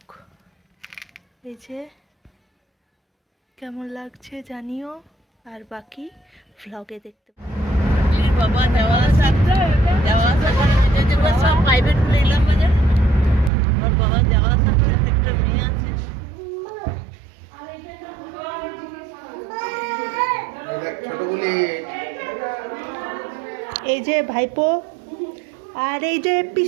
এই যে কেমন লাগছে জানিও, আর বাকি ভ্লগে দেখতে এই যে ভাইপো আর এই যে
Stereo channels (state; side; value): drops out; left; at 13.5 s